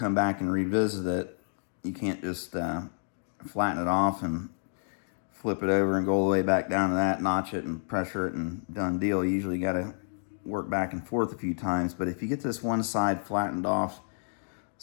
back and revisit it. You can't just flatten it off and flip it over and go all the way back down to that, notch it and pressure it and done deal. You usually got to work back and forth a few times. But if you get this one side flattened off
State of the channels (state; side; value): silent; right; digital silence